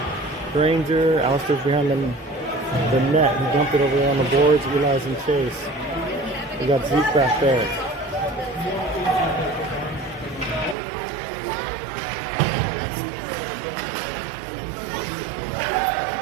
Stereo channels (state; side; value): drops out; left; at 10.8 s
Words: Granger. Alistair's behind the net. He dumped it over there on the boards. Eli's and Chase. We got Zeke back there.